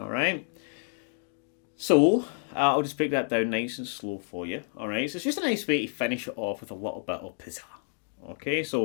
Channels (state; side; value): silent; right; 58 dB below the other